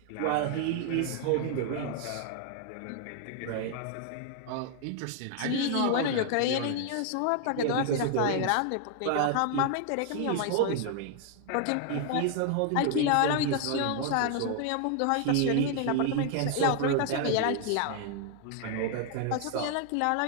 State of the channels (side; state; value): both; different; correlation 0.00